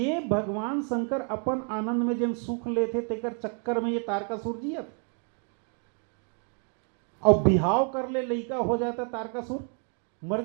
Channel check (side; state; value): left; quieter; 36.8 dB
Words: भगवान शंकर अपन आनंद में जन सुख लेते तेकर चक्कर में ये तारकासुर जियत, और बिहाव कर ले लइका हो जाता तारकासुर मर